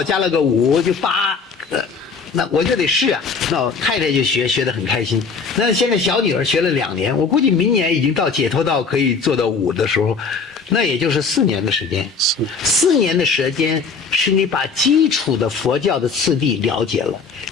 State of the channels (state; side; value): quieter; right; 5.0 dB